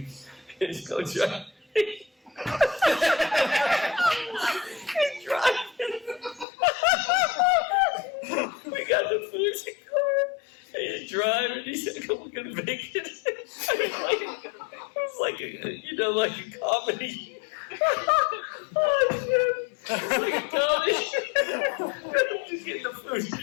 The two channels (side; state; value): right; drops out; at 6.5 s